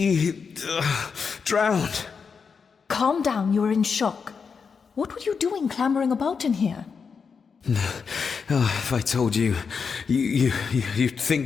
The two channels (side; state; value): right; quieter; 5.7 dB